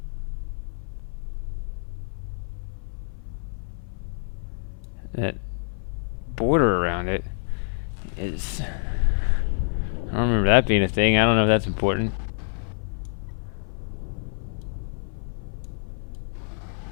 That border around it is... I don't remember that being a thing. I don't know if that's important.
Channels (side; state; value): right; silent; 58 dB below the other